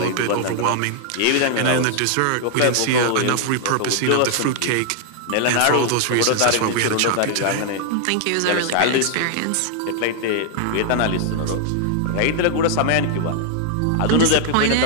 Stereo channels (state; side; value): different; both; correlation 0.00